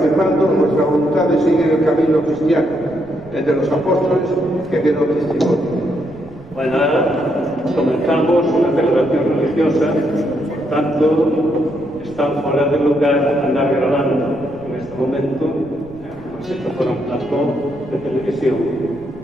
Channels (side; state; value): right; noise; rumble, 22 dB below the sound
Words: nuestra voluntad de seguir el camino cristiano, el de los apóstoles que dieron testimonio. Bueno, ahora comenzamos una celebración religiosa, por tanto, está fuera de lugar andar grabando en este momento, como si esto fuera un plató de televisión.